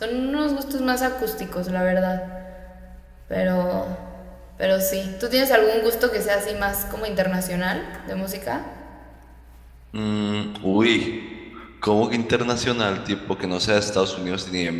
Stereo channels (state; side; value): identical; both; correlation 1.00